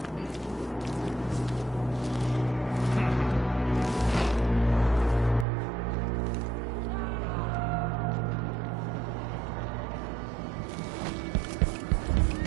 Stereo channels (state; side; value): drops out; left; at 5.5 s